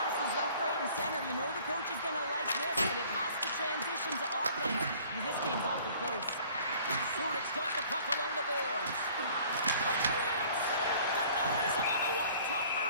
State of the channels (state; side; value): inverted; both; correlation -0.52